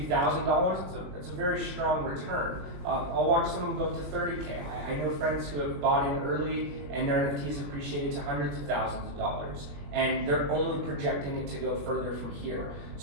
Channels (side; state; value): left; late; 21 ms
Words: $1,000s, it's a very strong return. I'll watch someone go up to 30K. I know friends who have bought in early and their NFTs appreciated to hundreds of thousands of dollars, and they're only projecting it to go further from here.